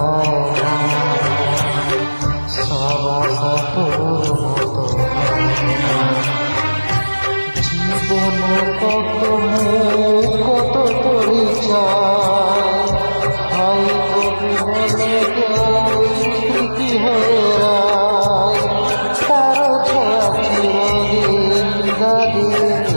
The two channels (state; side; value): inverted; both; correlation -1.00